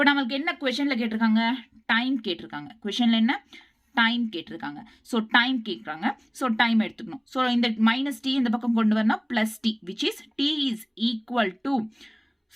நமக்கு என்ன questionல கேட்டிருக்காங்க? டைம் கேட்டிருக்காங்க. questionல என்ன? டைம் கேட்டிருக்காங்க. ஸோ டைம் கேட்குறாங்க. ஸோ டைம் எடுத்துக்கணும். ஸோ இந்த மைனஸ் டி இந்த பக்கம் கொண்டு வரணும், plus T, which is T is equal to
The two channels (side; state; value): both; identical; correlation 1.00